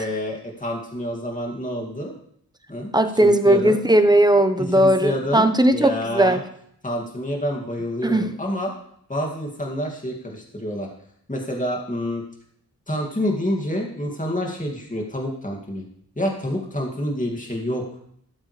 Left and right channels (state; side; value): normal; both; correlation 0.69